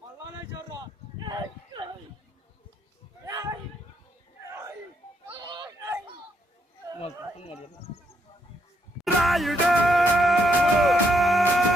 అలానే చూడరా. రాయుడు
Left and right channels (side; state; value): both; normal; correlation 0.76